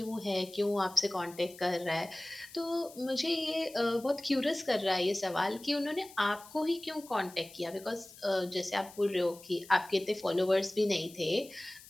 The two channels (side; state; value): left; noise; hiss, 20 dB below the sound